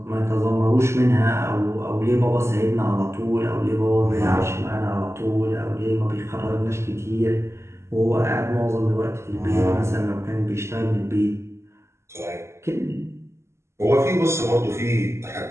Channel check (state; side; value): late; left; 0.13 ms